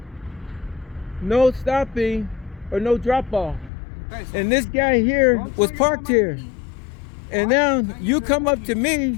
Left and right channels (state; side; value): drops out; right; at 3.7 s